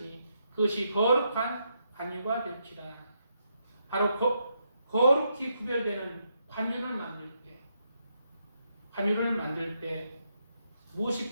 그것이 거룩한 관유가 될지라. 바로 거룩히 구별되는 관유를 만들 때 무엇이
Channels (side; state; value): both; inverted; correlation -0.79